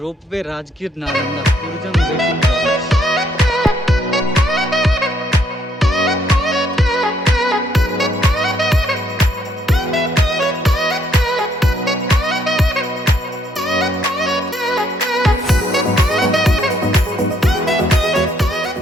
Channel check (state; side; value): normal; both; correlation 0.69